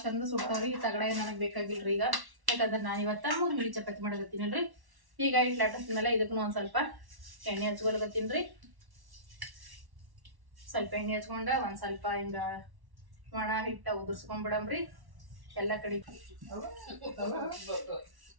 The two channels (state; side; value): late; left; 1.1 ms